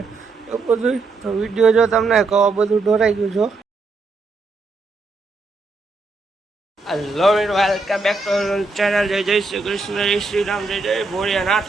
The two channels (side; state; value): left; quieter; 3.7 dB